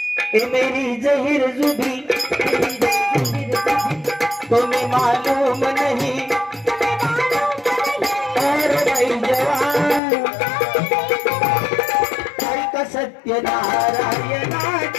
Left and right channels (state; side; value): drops out; right; at 10.0 s